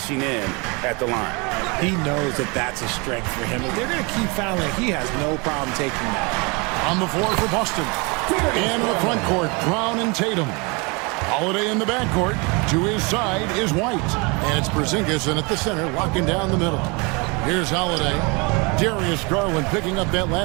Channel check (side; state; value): left; quieter; 29.3 dB